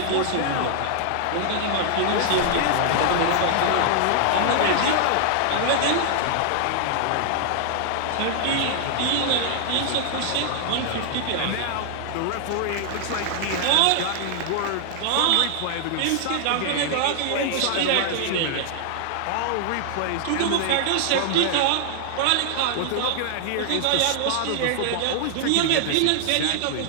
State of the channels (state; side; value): different; both; correlation 0.00